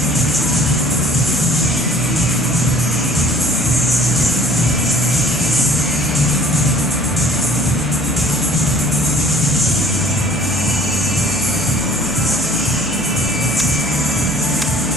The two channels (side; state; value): right; noise; hum, 13 dB below the sound